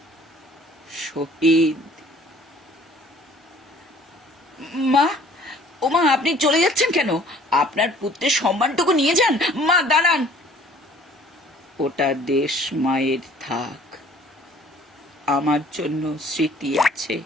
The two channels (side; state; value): both; normal; correlation 0.54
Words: শহীদ। মা, ও মা, আপনি চলে যাচ্ছেন কেন? আপনার পুত্রের সম্মানটুকু নিয়ে যান। মা দাঁড়ান। ওটা দেশ মায়ের থাক, আমার জন্য স্মৃতি আছে,